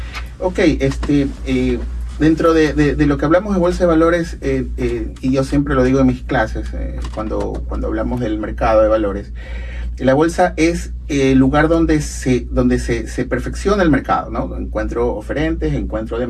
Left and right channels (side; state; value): both; identical; correlation 1.00